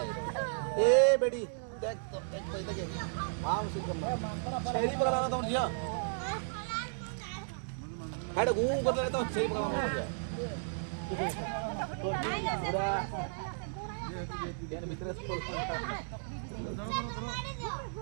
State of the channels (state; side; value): silent; left; digital silence